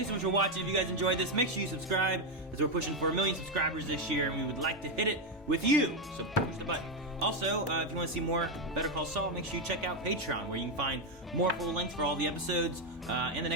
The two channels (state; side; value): normal; both; correlation 0.06